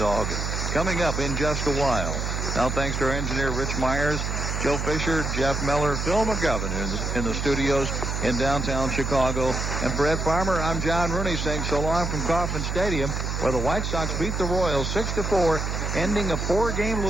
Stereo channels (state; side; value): noise; right; hum, 2 dB below the sound